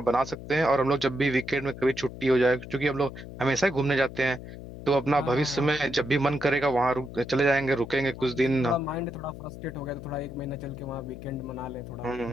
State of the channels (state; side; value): noise; left; hum, 12 dB below the sound